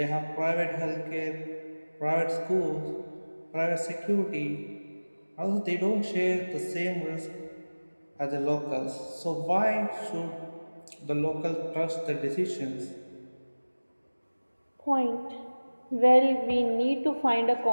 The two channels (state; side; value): inverted; both; correlation -1.00